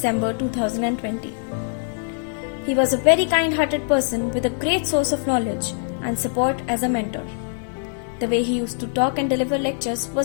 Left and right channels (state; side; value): silent; right; digital silence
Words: 2020. He was a very kind-hearted person with a great source of knowledge and support as a mentor. The way he used to talk and deliver lectures